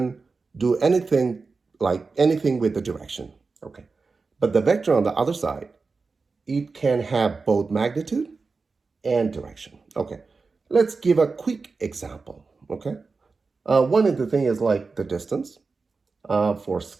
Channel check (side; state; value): left; quieter; 4.3 dB